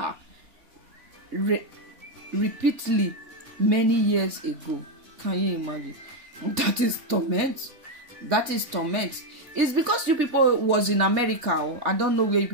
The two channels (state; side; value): late; left; 3.5 ms